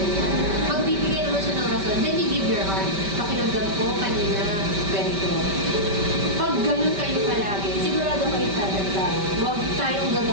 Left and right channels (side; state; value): left; late; 5.2 ms